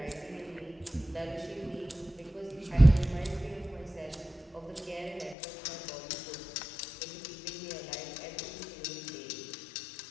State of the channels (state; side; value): drops out; right; at 5.4 s